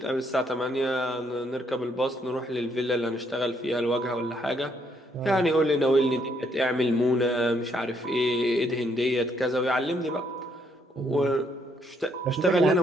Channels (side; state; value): both; normal; correlation 0.71